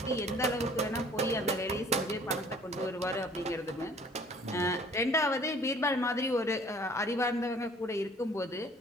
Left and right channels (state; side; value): normal; both; correlation 0.54